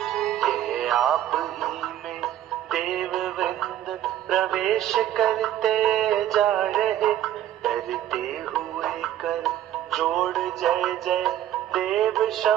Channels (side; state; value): left; quieter; 12.0 dB